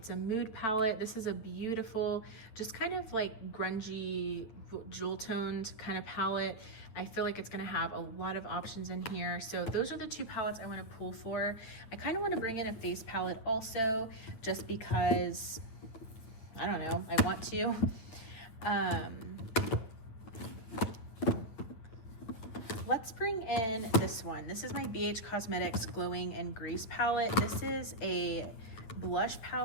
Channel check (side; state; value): right; late; 9.2 ms